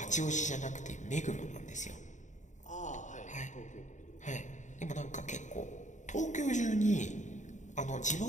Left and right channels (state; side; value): late; right; 0.35 ms